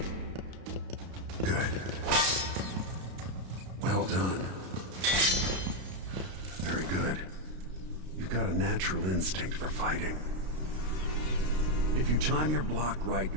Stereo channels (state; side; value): late; left; 32 ms